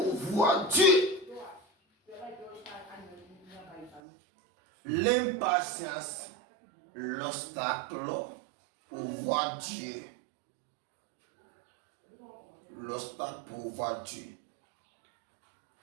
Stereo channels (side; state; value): left; drops out; at 4.0 s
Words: voir Dieu. L'impatience, l'obstacle pour voir Dieu. L'obstacle pour voir Dieu.